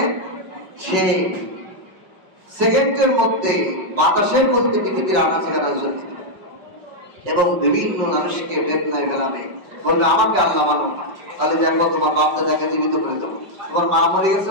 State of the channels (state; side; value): late; left; 5.3 ms